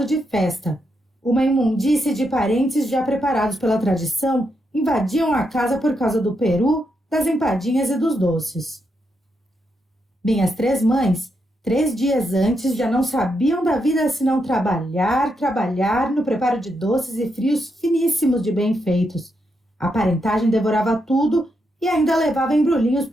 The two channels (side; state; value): both; normal; correlation 0.82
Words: de festa. Uma imundície de parentes já preparados pela tradição invadiam a casa por causa do peru, das empadinhas e dos doces. Minhas 3 mães, 3 dias antes, já não sabiam da vida senão trabalhar no preparo de doces e frios finíssimos de bem feitos. A parentagem devorava tudo e ainda levava embrulhinhos